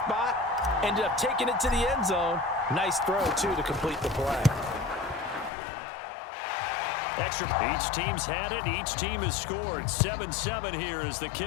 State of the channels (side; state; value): right; drops out; at 5.5 s